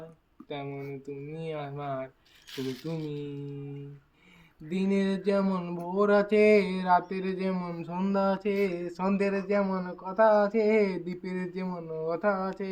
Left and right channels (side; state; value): both; identical; correlation 1.00